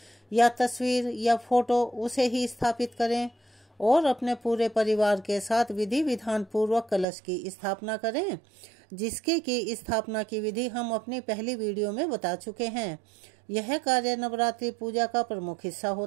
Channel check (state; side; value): drops out; left; at 7.1 s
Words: या तस्वीर या फोटो, उसे ही स्थापित करें और अपने पूरे परिवार के साथ विधि विधान पूर्वक कलश की स्थापना करें, जिसकी की स्थापना की विधि हम अपनी पहली वीडियो में बता चुके हैं। यह कार्य नवरात्रि पूजा का प्रमुख हिस्सा